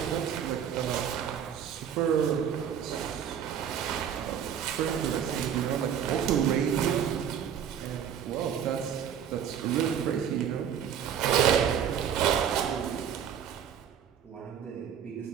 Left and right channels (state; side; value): quieter; left; 8.7 dB